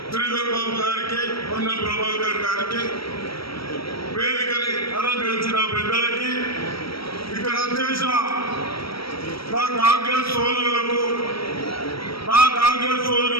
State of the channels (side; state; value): right; late; 0.75 ms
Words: శ్రీధర్ బాబు గారికి, పొన్నం ప్రభాకర్ గారికి, వేదికని అలంకరించిన పెద్దలకి, ఇక్కడ చేసిన నా కాంగ్రెస్ సోదరులకు, నా కాంగ్రెస్